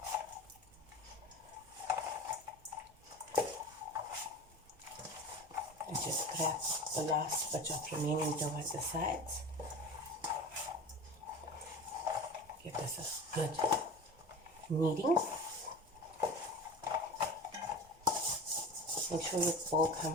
And just grab the last bit of remaining dough at the sides. Give this a good kneading. Make sure your bowl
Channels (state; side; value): normal; both; correlation 0.34